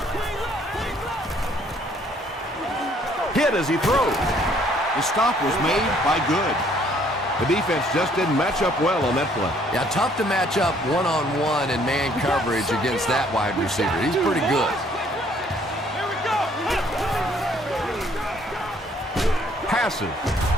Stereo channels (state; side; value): normal; both; correlation 0.63